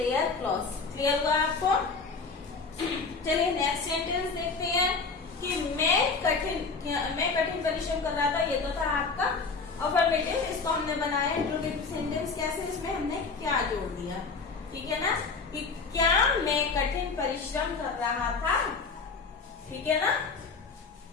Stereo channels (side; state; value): right; quieter; 4.5 dB